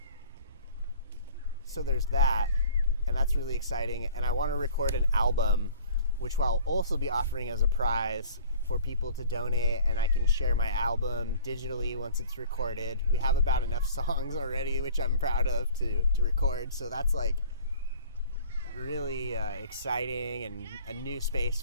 So there's that, and that's really exciting. And I want to record an album, which I'll also be offering as a prize for people to donate, and I can share my album digitally once it's recorded. We have about enough songs already, which I'm proud of to record, so that's like really exciting and a new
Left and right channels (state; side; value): inverted; both; correlation -0.47